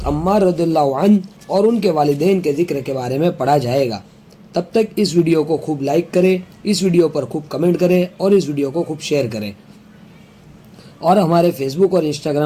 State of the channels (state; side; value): identical; both; correlation 1.00